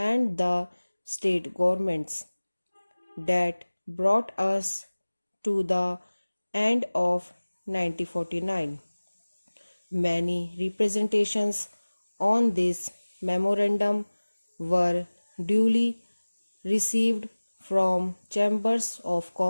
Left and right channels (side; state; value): both; inverted; correlation -1.00